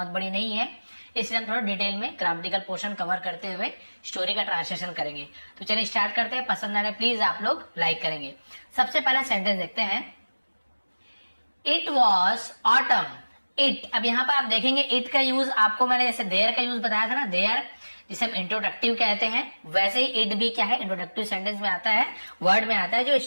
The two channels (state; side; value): inverted; both; correlation -1.00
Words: बड़ी नहीं है, इसलिए हम थोड़ा डिटेल में ग्रामेटिकल पोर्शन कवर करते हुए स्टोरी का ट्रांसलेशन करेंगे। तो चलिए स्टार्ट करते हैं। पसंद आने प्लीज आप लोग लाइक करेंगे। सबसे पहला सेंटेंस देखते हैं। It was autumn. इट, अब यहाँ पर आप देखेंगे इट का यूज आपको मैंने जैसे देयर का यूज बताया था ना, देयर जिसे हम इंट्रोडक्टिव कहते हैं, वैसे ही इट भी क्या है, इंट्रोडक्टिव सेंटेंस में आता है, वर्ड में आता है जो